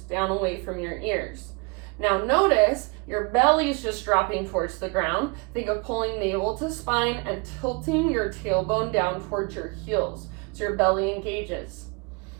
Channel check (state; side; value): quieter; left; 30.6 dB